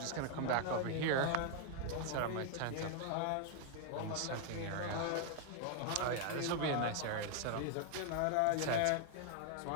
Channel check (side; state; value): both; different; correlation 0.00